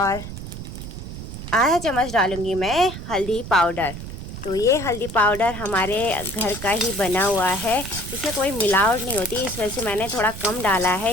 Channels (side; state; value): right; noise; rumble, 10 dB below the sound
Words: आधा चम्मच डालूँगी मैं हल्दी पाउडर। तो ये हल्दी पाउडर हमारे घर का ही बना हुआ है, इसमें कोई मिलावट नहीं होती, इस वजह से मैंने थोड़ा कम डाला है।